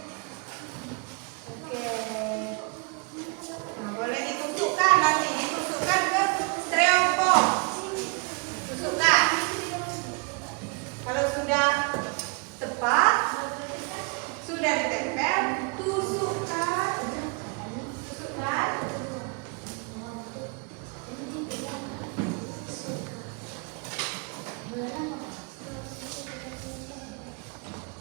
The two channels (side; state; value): left; quieter; 33.4 dB